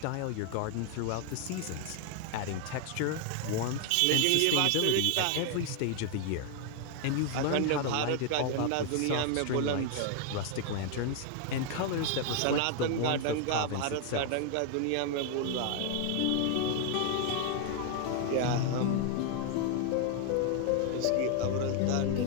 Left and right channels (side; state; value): both; different; correlation 0.00